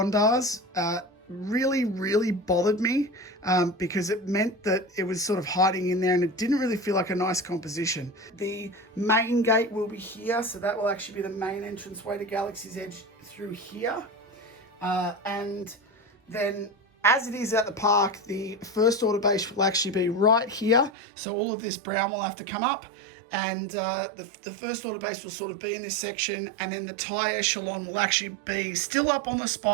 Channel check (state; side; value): drops out; left; at 20.9 s